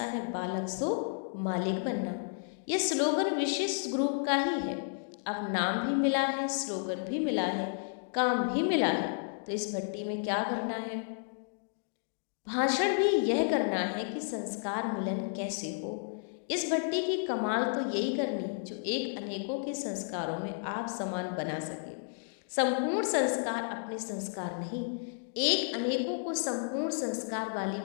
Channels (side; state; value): right; silent; digital silence